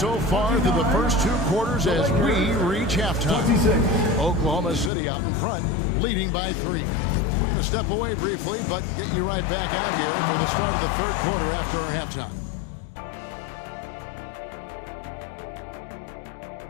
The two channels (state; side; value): drops out; right; at 4.9 s